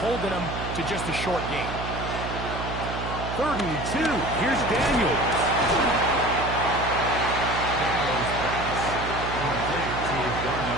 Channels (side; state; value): right; noise; hum, 6 dB below the sound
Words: holding them to just a short gain. 3rd and 2. Here's Daniels.